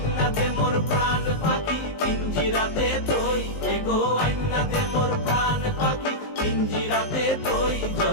দে মোর প্রাণ পাখি পিঞ্জিরাতে তুই, এগো আইনা দে মোর প্রাণ পাখি পিঞ্জিরাতে তুই।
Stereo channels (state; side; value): late; right; 19 ms